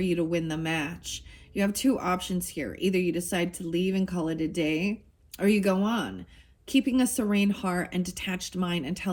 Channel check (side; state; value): both; identical; correlation 1.00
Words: you to win the match. You have 2 options here. Either you decide to leave and call it a day, or you go on, keeping a serene heart and detached mind